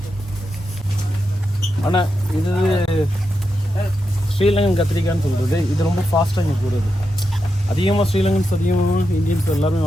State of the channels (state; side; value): normal; both; correlation 0.87